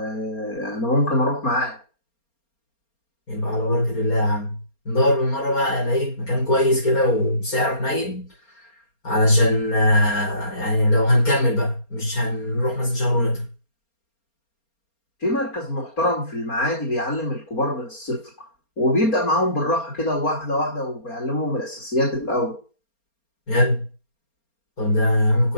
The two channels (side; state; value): right; late; 4.3 ms